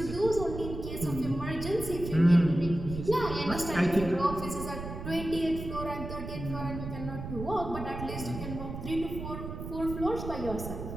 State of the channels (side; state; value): right; noise; rumble, 8 dB below the sound